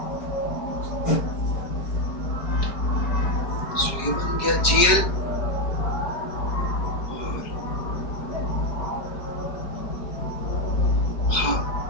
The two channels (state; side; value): late; right; 4.7 ms